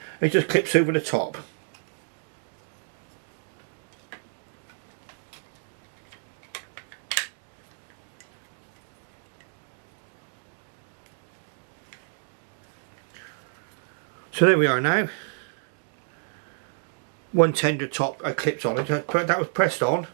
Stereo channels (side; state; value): left; silent; digital silence